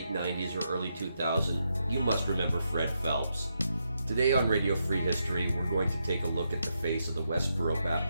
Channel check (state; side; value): inverted; both; correlation -0.82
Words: 90s or early 2000s, you must remember Fred Phelps. Today on Radio Free History, we're going to take a look at the face of the Westboro